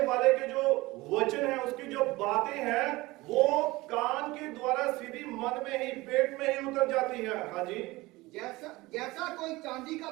के जो वचन है, उसकी जो बातें हैं, वो कान के द्वारा सीधी मन में ही, पेट में ही उतर जाती है। हाँ जी। जैसा कोई चांदी का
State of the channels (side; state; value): left; quieter; 20.7 dB